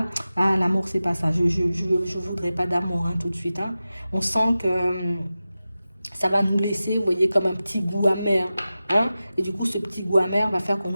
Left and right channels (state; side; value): inverted; both; correlation -0.95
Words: l'amour, c'est pas ça. Je voudrais pas d'amour, hein, tout de suite, hein. On sent que ça va nous laisser, vous voyez, comme un petit goût amer. Hein? Et du coup, ce petit goût amer va faire qu'on